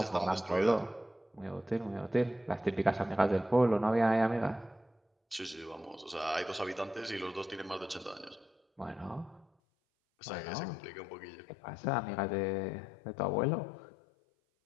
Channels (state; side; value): drops out; right; at 9.5 s